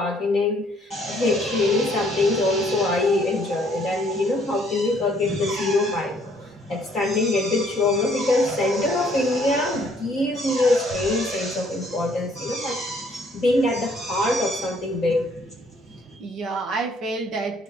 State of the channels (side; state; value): both; normal; correlation 0.63